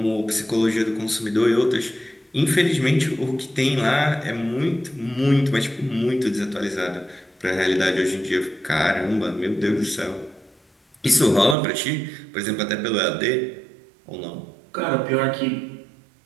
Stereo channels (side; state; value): left; drops out; at 11.6 s